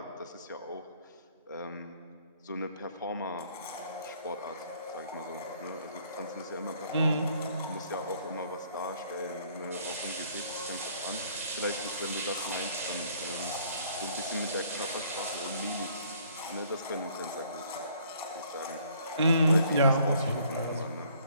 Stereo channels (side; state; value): both; inverted; correlation -0.61